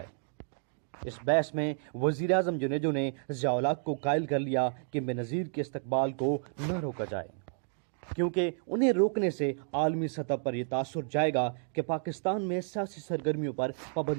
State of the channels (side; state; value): left; silent; 57 dB below the other